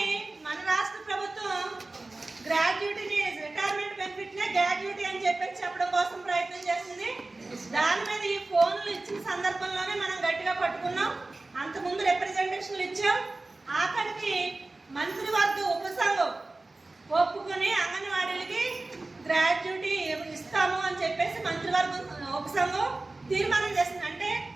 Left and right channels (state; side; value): quieter; left; 3.1 dB